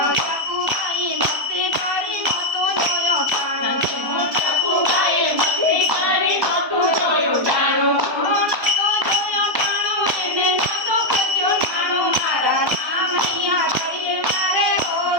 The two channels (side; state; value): left; late; 1.2 ms